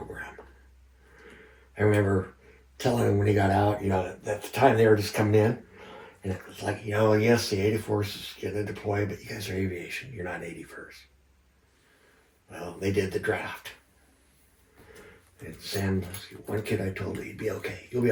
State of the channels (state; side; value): identical; both; correlation 1.00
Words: I remember telling him when he got out, you know, at the time they were just coming in, and it was like, you know, yes, the 84th is going to deploy, but you guys are aviation, you're not 81st. Well, they did the draft. And Sam, one kid I told, "He'd be okay. You'll be